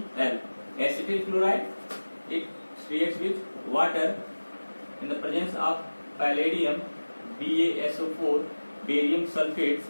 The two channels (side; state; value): both; inverted; correlation -1.00